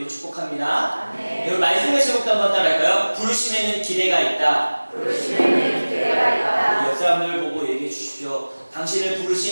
축복합니다. 아멘. 여러분 말씀의 제목도 한번 따라할까요? 부르심에는 기대가 있다. 부르심에는 기대가 있다. 옆 사람들 보고 얘기해 주십시오. 당신을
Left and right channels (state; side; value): inverted; both; correlation -1.00